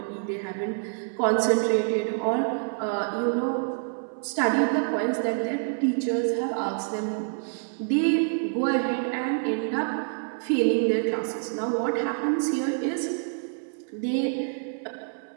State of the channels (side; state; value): left; silent; 60 dB below the other